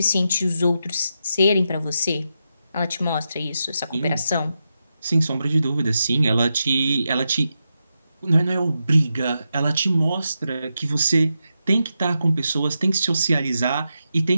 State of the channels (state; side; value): inverted; both; correlation -0.87